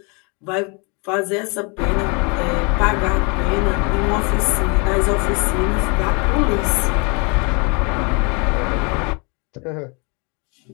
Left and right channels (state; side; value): quieter; right; 32.2 dB